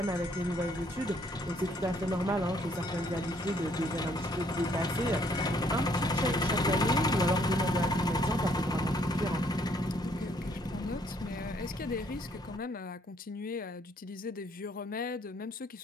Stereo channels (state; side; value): normal; both; correlation 0.67